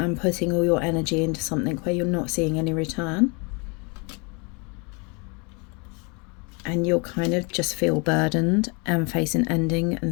putting all your energy into something where you're not seeing any return. And you'll kind of just feel burdened and face an ending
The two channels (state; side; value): quieter; right; 31.7 dB